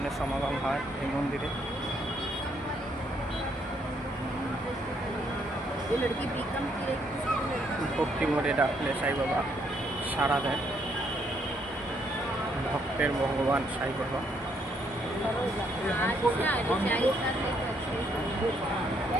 সমাগম হয় এই মন্দিরে। ভক্তি মোড়ে ডাকলে সাই বাবা সাড়া দেয়। ভক্তের ভগবান সাই বাবা।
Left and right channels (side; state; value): both; normal; correlation 0.71